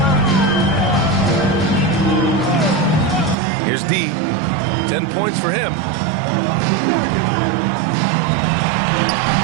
Here's D. 10 points for him.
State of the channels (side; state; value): left; drops out; at 3.4 s